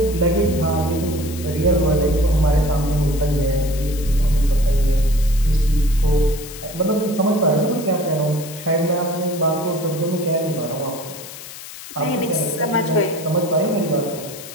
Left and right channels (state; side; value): noise; left; hiss, 14 dB below the sound